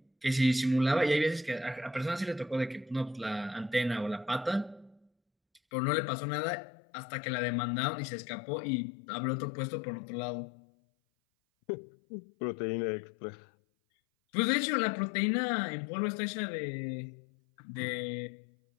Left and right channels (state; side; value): drops out; right; at 5.6 s